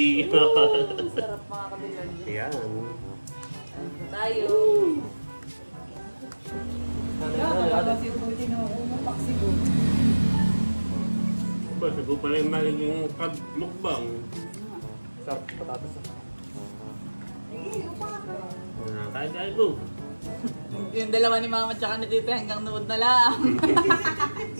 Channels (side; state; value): both; inverted; correlation -1.00